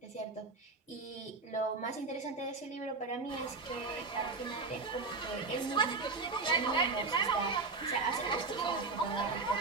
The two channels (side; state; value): left; quieter; 4.0 dB